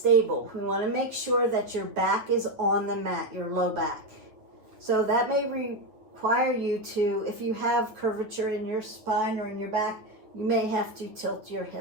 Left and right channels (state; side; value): late; left; 9.0 ms